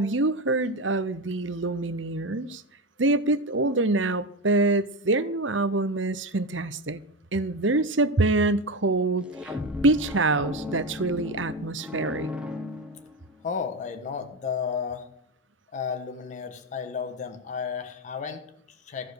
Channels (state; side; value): normal; both; correlation 0.17